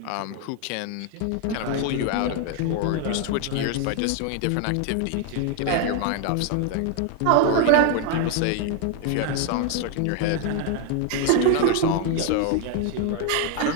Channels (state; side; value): different; both; correlation 0.01